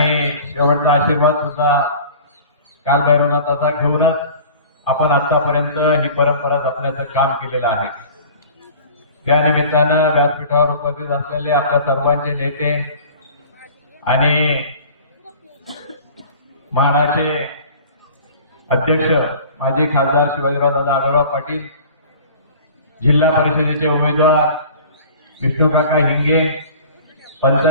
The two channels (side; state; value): both; inverted; correlation -0.44